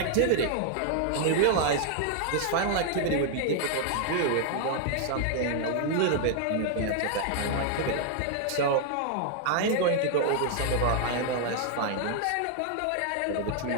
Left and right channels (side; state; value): both; different; correlation 0.00